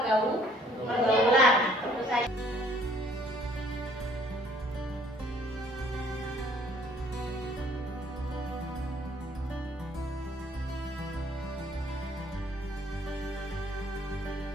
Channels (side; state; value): both; normal; correlation 0.60